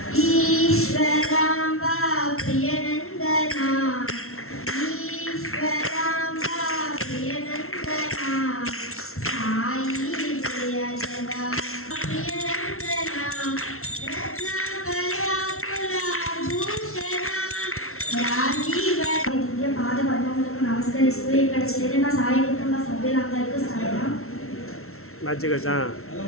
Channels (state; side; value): late; right; 0.62 ms